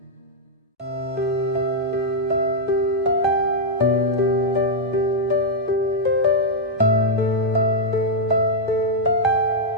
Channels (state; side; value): normal; both; correlation -0.04